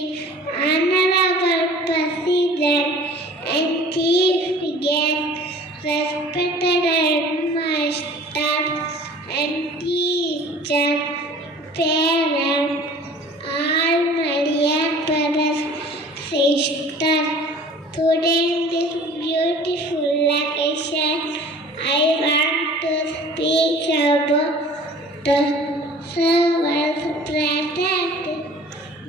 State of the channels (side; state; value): both; normal; correlation 0.46